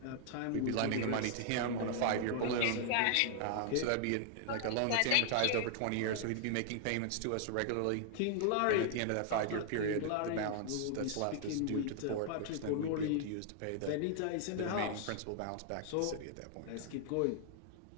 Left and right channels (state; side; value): different; both; correlation 0.00